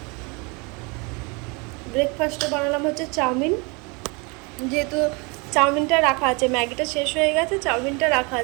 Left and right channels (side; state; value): left; quieter; 29.8 dB